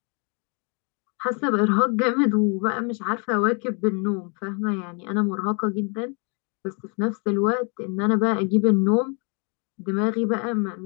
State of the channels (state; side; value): quieter; right; 36.1 dB